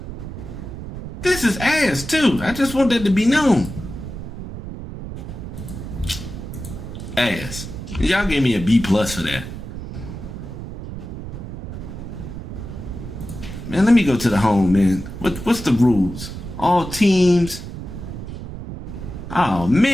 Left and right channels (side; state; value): right; noise; rumble, 9 dB below the sound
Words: This is ass, too. I just want that to be known. Ass. Y'all gave me a B+ for that. Man, let me go to the home, man. What's the rules? All teams. Oh,